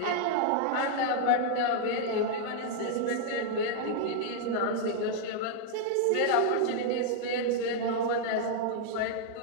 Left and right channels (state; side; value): different; both; correlation 0.00